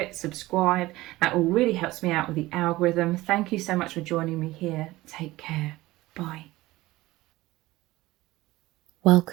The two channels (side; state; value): left; quieter; 18.4 dB